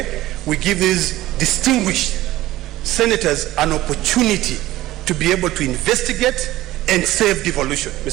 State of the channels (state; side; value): quieter; left; 16.1 dB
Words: We give these distinguished senators an opportunity to be able to investigate and save devolution.